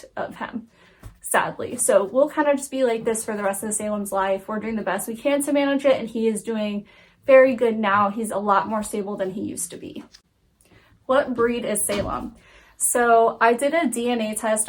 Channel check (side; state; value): both; identical; correlation 1.00